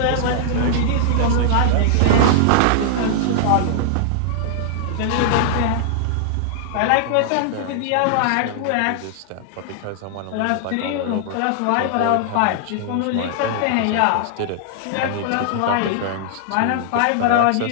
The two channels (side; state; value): both; different; correlation -0.01